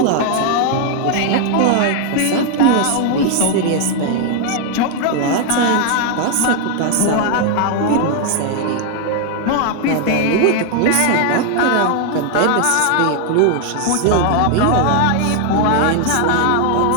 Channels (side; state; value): both; different; correlation 0.00